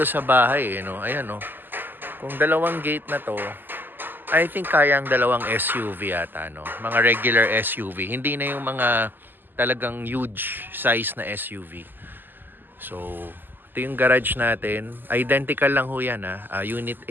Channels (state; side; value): late; left; 0.092 ms